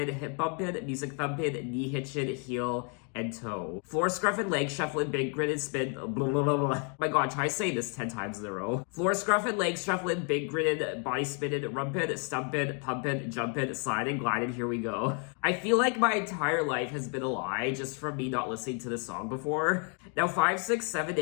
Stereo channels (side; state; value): right; quieter; 39.1 dB